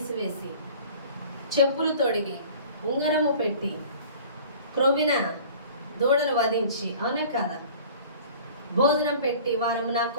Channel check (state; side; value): inverted; both; correlation -0.46